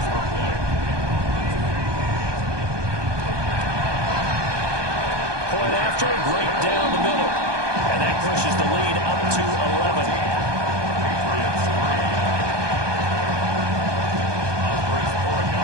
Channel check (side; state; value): left; late; 1.2 ms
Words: Point after, right down the middle. And that pushes the lead up to 11.